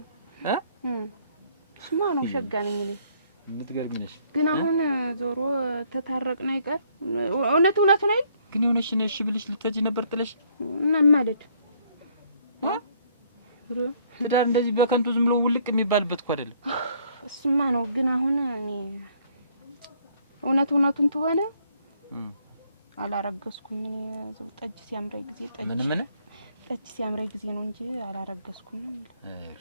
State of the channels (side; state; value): both; inverted; correlation -0.65